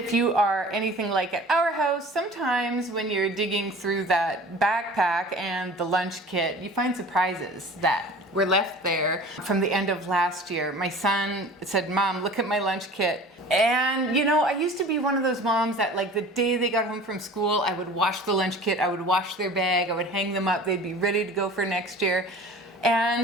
you are anything like at our house, sometimes when you're digging through that backpack and the lunch kit, you find surprises that were left there from the end of last year. My son said, "Mom, look at my lunch kit." And you know, I used to be one of those moms that like the day they got home from school, I would wash the lunch kit, I would wash their bag, I would hang them up, they'd be ready to go for next year.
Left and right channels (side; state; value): both; normal; correlation 0.42